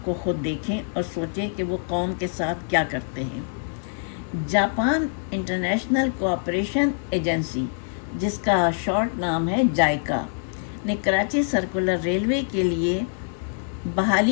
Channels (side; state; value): right; silent; 56 dB below the other